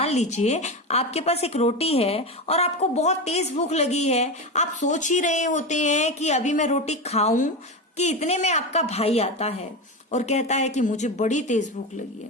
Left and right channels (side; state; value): both; normal; correlation 0.19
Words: लीजिए आपके पास एक रोटी है और आपको बहुत तेज भूख लगी है। आप सोच ही रहे होते हैं कि अभी मैं रोटी खाऊं कि इतने में आपका भाई आता है और कहता है कि मुझे बड़ी तेज भूख लगी